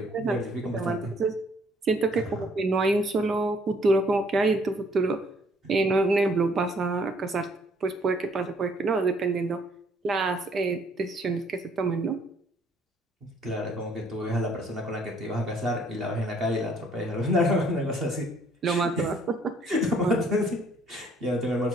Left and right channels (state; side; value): normal; both; correlation 0.63